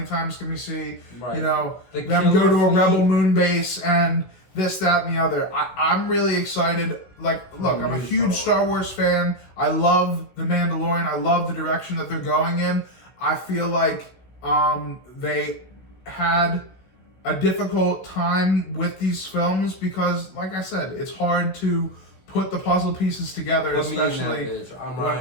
times can we see them go to a rebel moon base and this, that, and the other? I'm really excited. Like, look, I'm a huge Star Wars fan. I love The Mandalorian. I love the direction that they're going in. I feel like they had a difficult time with these films because, like I said, it's hard to put the puzzle pieces together, especially. I'm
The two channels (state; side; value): late; right; 16 ms